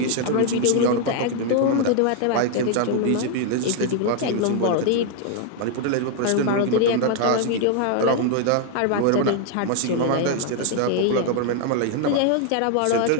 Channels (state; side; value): different; both; correlation 0.00